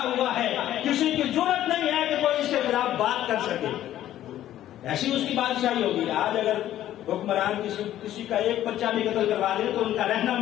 ہوا ہے. کسی کی جرت نہیں ہے کہ کوئی اس کے خلاف بات کر سکے. ایسی اس کی بادشاہی ہوگی. آج اگر حکمران کسی کا ایک بچہ بھی قتل کروا دے تو ان کا رہنا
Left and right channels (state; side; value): quieter; right; 12.6 dB